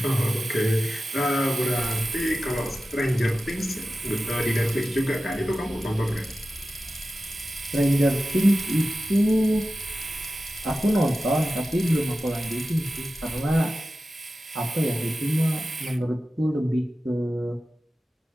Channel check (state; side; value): normal; both; correlation 0.94